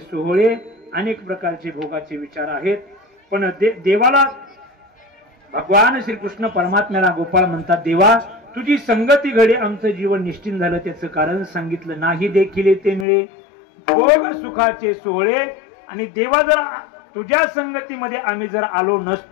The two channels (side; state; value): right; drops out; at 13.1 s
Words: अनेक प्रकारचे भोगाचे विचार आहेत पण देवाला भगवान श्रीकृष्ण परमात्म्याला गोपाळ म्हणतात देवा तुझी संगती घडे आमचं जीवन निश्चिंत झालं. त्याचं कारण सांगितलं. नाही देखील ते मिळे भोग सुखाचे सोहळे. आणि देवा जर तुझ्या संगतीमध्ये आम्ही जर आलो